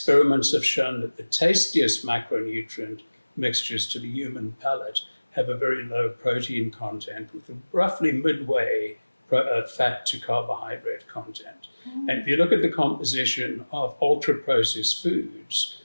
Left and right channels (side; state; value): both; inverted; correlation -1.00